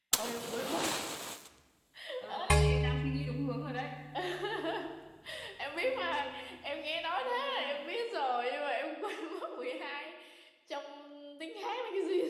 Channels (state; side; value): identical; both; correlation 1.00